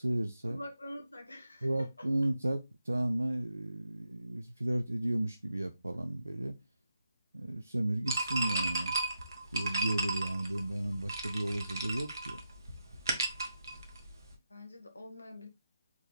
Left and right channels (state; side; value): inverted; both; correlation -0.87